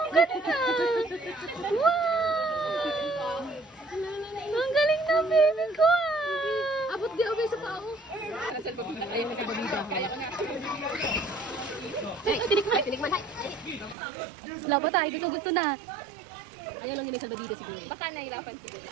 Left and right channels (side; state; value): left; drops out; at 14.0 s